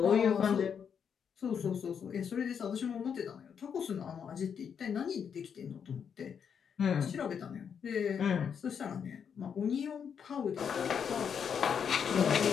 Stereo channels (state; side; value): quieter; right; 7.3 dB